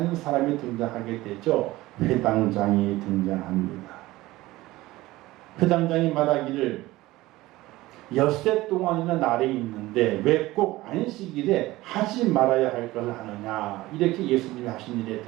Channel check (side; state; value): left; quieter; 18.3 dB